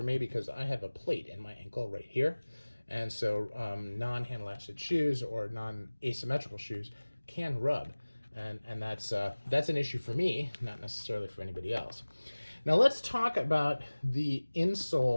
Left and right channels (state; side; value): inverted; both; correlation -1.00